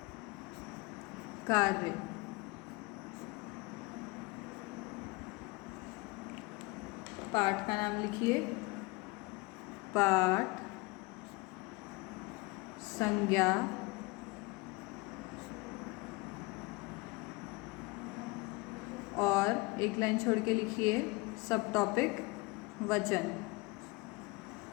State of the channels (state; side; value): quieter; right; 25.0 dB